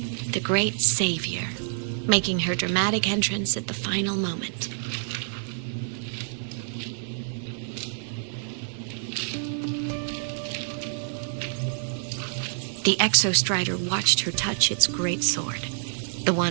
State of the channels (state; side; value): silent; left; 60 dB below the other